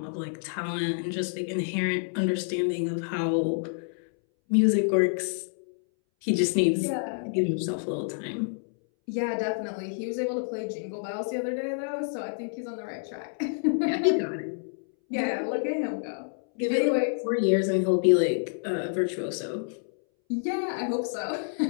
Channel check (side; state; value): right; silent; 59 dB below the other